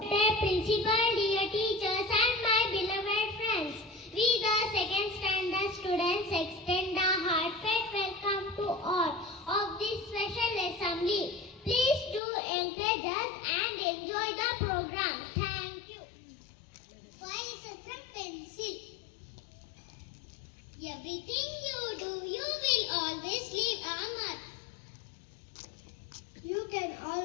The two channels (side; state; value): right; drops out; at 12.2 s